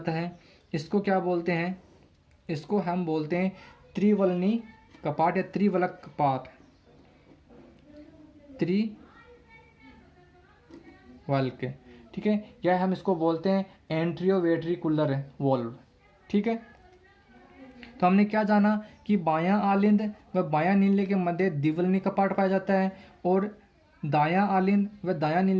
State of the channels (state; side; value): identical; both; correlation 1.00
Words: है। इसको क्या बोलते हैं, इसको हम बोलते हैं त्रिवलनी कपाट या त्रिवलक कपाट, त्रिवल्क। ठीक है, या हम इसको बोलते हैं एंट्रियोवेट्रिकुलर वॉल्व। ठीक है, तो हमने क्या जाना कि बायां आलिंद व बायां नीले के मध्य द्विवलनी कपाट पाया जाता है और दायां आलिंद व दायां